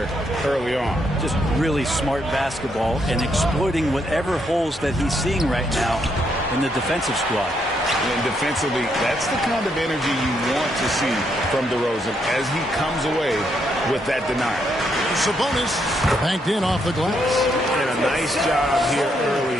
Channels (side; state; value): both; normal; correlation 0.76